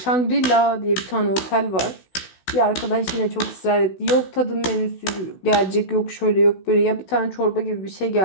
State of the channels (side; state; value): right; late; 16 ms